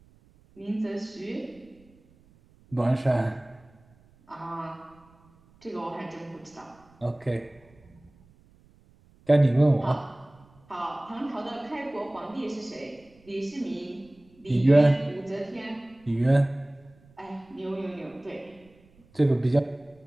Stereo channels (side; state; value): right; noise; rumble, 29 dB below the sound